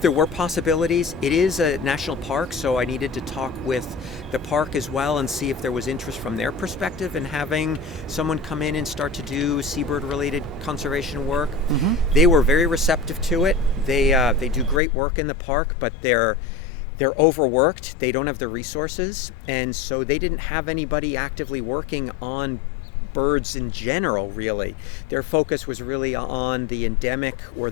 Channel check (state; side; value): drops out; right; at 14.8 s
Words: there were possibilities. It is a national park, so I needed to talk with the park as well and see if there was interest from their perspective in having someone come in and start to do seabird-related conservation work. Mm-hmm. They were very receptive to it. They do great work in the park, but they're overworked. They don't have the resources, and so they didn't have anybody actively working on birds in general, really. Their focus was really on the endemic or